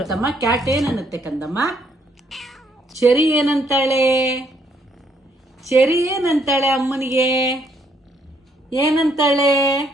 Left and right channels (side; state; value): both; normal; correlation 0.70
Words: ಕ್ಯಾಟ್ ಏನನ್ನುತ್ತೆ ಕಂದಮ್ಮ? ಚೆರಿ ಏನಂತಾಳೆ? ಚೆರಿ ಏನಂತಾಳೆ ಅಮ್ಮನಿಗೆ? ಏನಂತಾಳೆ?